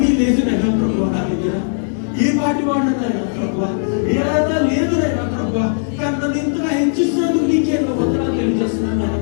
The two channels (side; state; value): right; silent; 67 dB below the other